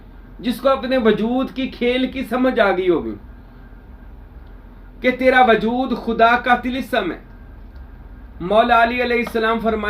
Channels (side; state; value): both; identical; correlation 1.00